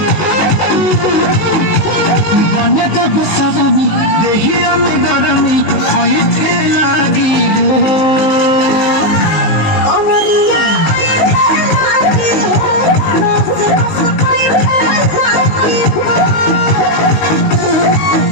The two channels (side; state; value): right; late; 19 ms